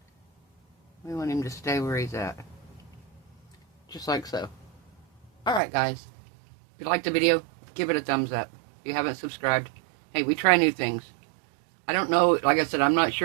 We want him to stay where he's at. Just like so. Alright guys. If you liked the video, give it a thumbs up. If you haven't subscribed, hey, we try new things. I don't know, like I said, I'm not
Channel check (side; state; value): left; drops out; at 5.6 s